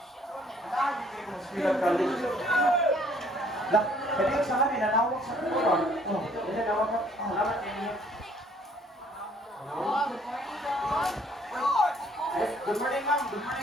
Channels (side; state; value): both; normal; correlation 0.61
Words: Ganahan, hindi ka mo eskwela college. Lah, jadi sa kami, nanawag sa kuwa. Oh, jadi nanawag ka. Salamat niyo. Good morning, ma'am. Good